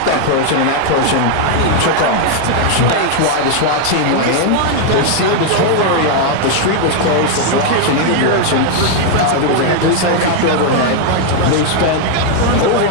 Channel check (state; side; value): different; both; correlation 0.00